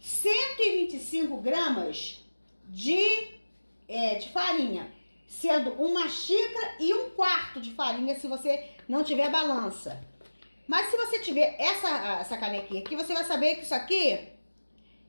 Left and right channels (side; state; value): both; inverted; correlation -1.00